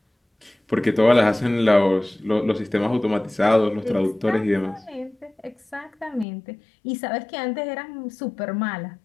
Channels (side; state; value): right; drops out; at 6.2 s